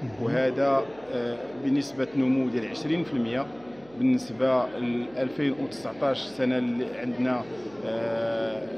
وهذا بنسبه نمو ديال 20% بالنسبه ل 2019 السنه اللي عندنا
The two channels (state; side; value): noise; right; hum, 25 dB below the sound